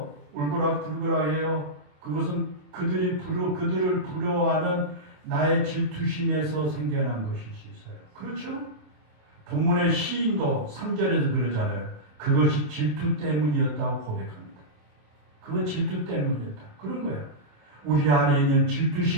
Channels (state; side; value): late; left; 27 ms